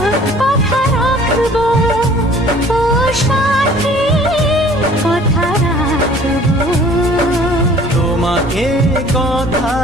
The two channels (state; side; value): noise; right; rumble, 17 dB below the sound